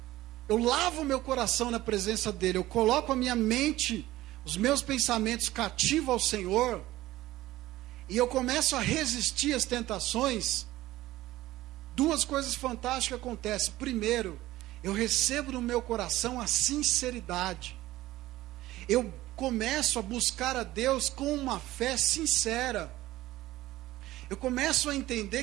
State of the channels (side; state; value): left; quieter; 16.5 dB